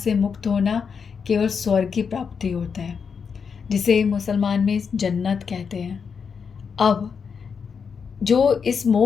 मुक्त होना केवल स्वर्ग की प्राप्ति होता है, जिसे मुसलमान में जन्नत कहते हैं। अब जो इस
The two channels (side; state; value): right; quieter; 6.1 dB